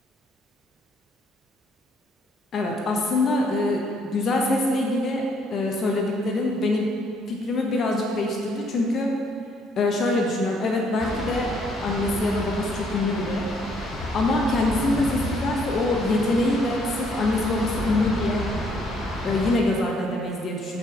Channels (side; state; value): both; normal; correlation 0.67